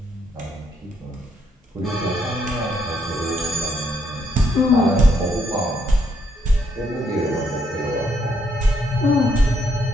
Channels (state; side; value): normal; both; correlation 0.74